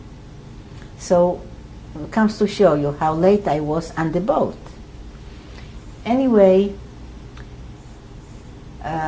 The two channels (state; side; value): identical; both; correlation 1.00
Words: So it comes to show you how late I was on the boat. Anyway,